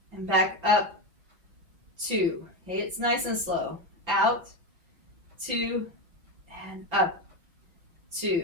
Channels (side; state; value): left; late; 5.7 ms